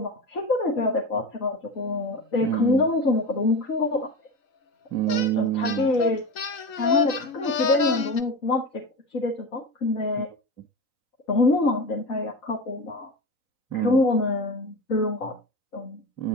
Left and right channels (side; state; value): right; late; 3.9 ms